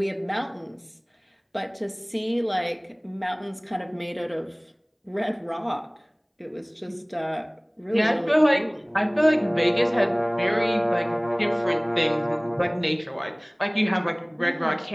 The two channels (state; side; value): identical; both; correlation 1.00